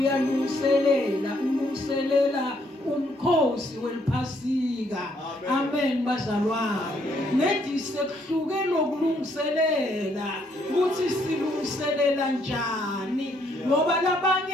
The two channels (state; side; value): normal; both; correlation 0.70